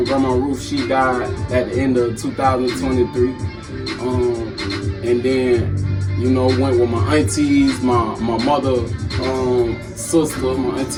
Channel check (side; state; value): both; identical; correlation 1.00